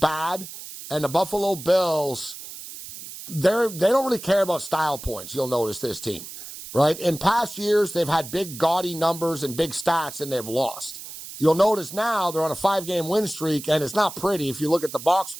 and the Buffalo Bills, they don't really care about style points, you'll notice, this team. Right? In past years, they've had big, gaudy numbers and big stats, and they've lost. You'll notice now they're on a 5-game win streak, and it's not pretty if you look at the box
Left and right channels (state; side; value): noise; right; hiss, 12 dB below the sound